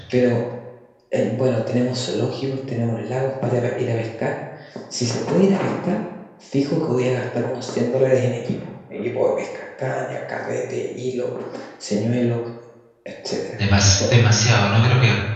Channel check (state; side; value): identical; both; correlation 1.00